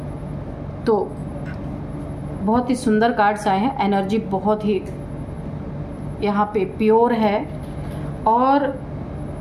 तो बहुत ही सुंदर कार्ड्स आए हैं। एनर्जी बहुत ही यहाँ पे प्योर है। और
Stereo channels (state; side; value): identical; both; correlation 1.00